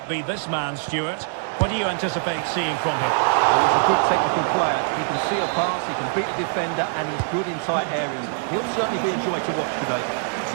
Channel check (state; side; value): silent; left; 63 dB below the other